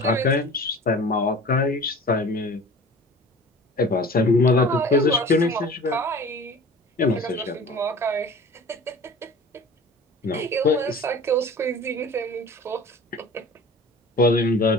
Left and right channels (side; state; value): both; normal; correlation 0.41